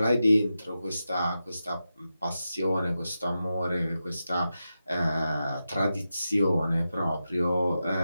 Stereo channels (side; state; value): both; inverted; correlation -0.90